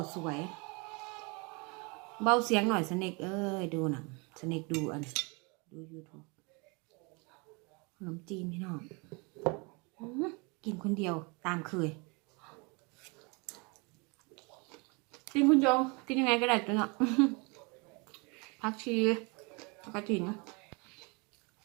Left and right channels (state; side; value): quieter; left; 30.0 dB